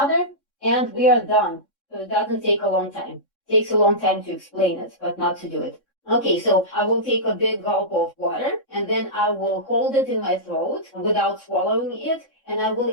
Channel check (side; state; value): right; late; 3.6 ms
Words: and we are done. So it doesn't take a long time. It takes a long time to explain it, but not to do it. Okay, so I will take a big gulp of water and then I will hold it in my throat without swallowing it, and I will